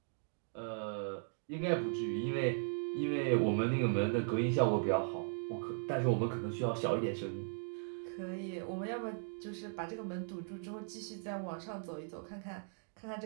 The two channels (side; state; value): left; silent; digital silence